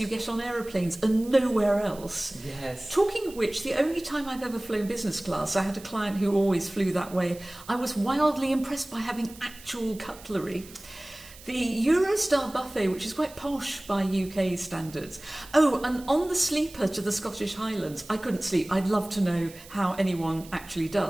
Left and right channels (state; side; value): noise; right; hiss, 19 dB below the sound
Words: get on aeroplanes are nowhere else. Yes. Talking of which, the only time I've ever flown business class, I had a client who always flew that way. I was wildly impressed by having actual cutlery. The Eurostar buffet, which is quite posh by UK standards. Oh, and on the sleeper to the Scottish Highlands, I couldn't sleep. I'd love to know how anyone actually